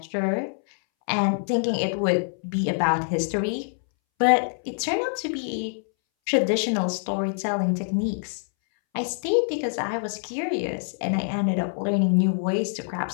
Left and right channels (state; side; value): silent; right; 62 dB below the other